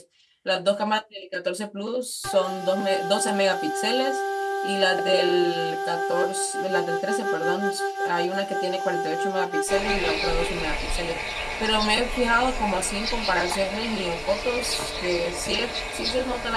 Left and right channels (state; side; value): identical; both; correlation 1.00